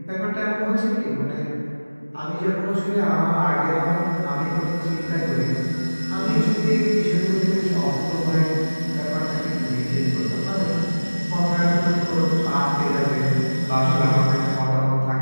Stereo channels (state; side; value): inverted; both; correlation -1.00